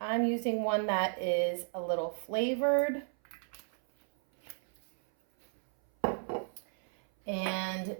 using one that is a little flavored. And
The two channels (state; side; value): silent; left; 55 dB below the other